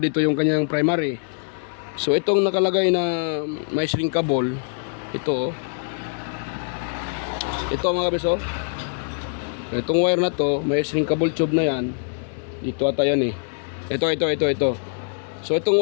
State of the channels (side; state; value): right; silent; 63 dB below the other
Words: yung kanyang primary? So itong nakalagay na may shrinkable, ito mga beso. Itong wire na to, may shrinkable tube na yan. Dito ata yan Ito. So itong